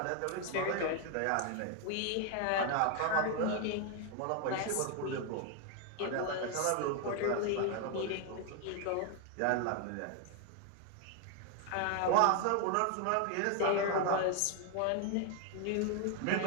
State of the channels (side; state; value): both; different; correlation 0.01